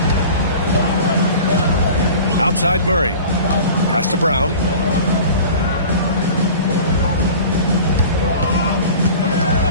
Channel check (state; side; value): inverted; both; correlation -0.40